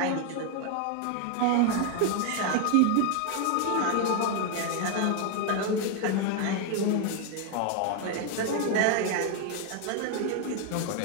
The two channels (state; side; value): different; both; correlation 0.01